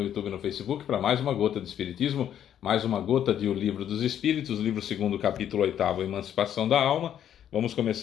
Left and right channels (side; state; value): right; quieter; 10.1 dB